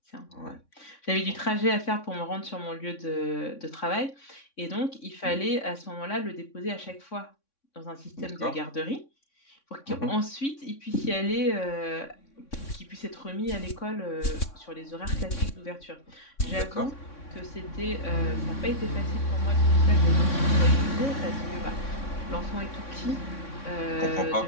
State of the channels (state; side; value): late; right; 3.6 ms